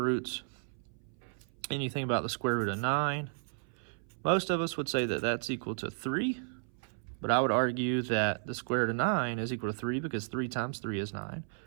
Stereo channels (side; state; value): left; silent; 55 dB below the other